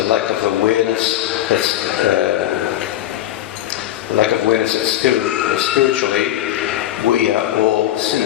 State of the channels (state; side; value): quieter; right; 13.1 dB